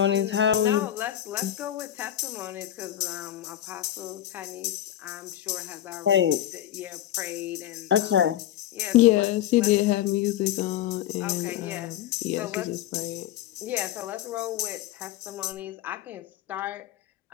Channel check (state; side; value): quieter; right; 12.2 dB